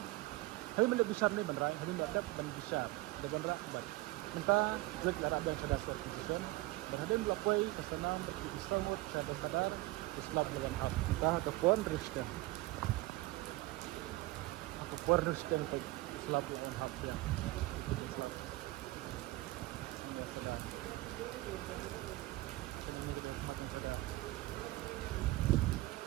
besar ni banrai, hadap ban besar. Ada banra kubat. Minta kulit lara dan sadar certification. Berhadap melakukan kesenam berkisamut sadar Islam lawan hap kita ataupun Kristen untuk Islam lawan hap ya.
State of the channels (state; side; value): quieter; left; 19.5 dB